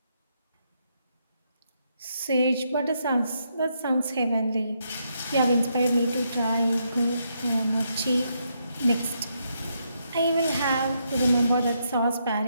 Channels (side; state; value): both; inverted; correlation -0.78